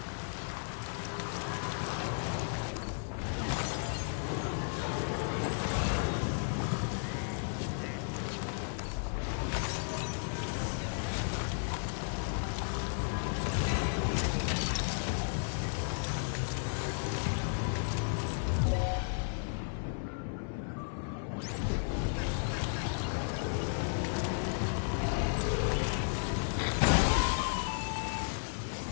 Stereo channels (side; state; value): right; silent; 55 dB below the other